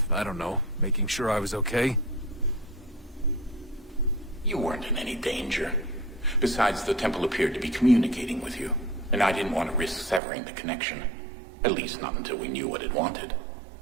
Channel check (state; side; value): drops out; left; at 10.2 s